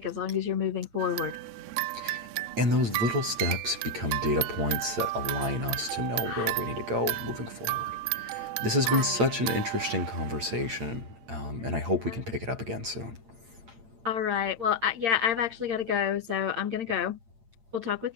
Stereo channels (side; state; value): left; late; 8.8 ms